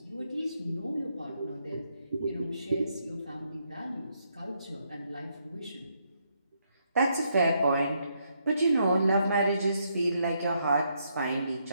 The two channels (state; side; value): inverted; both; correlation -0.76